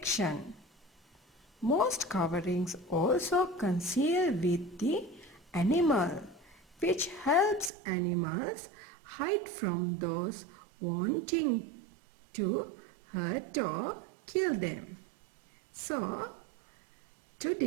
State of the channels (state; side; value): drops out; left; at 7.7 s